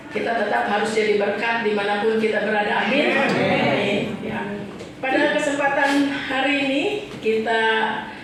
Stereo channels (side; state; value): both; identical; correlation 1.00